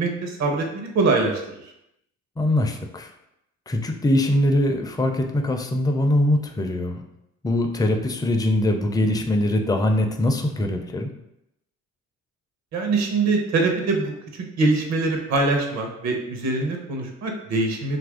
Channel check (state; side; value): normal; both; correlation 0.60